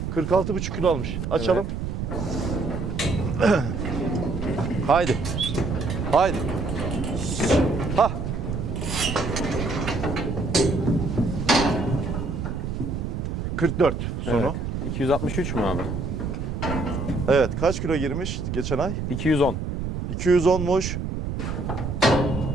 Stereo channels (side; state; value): right; noise; rumble, 3 dB below the sound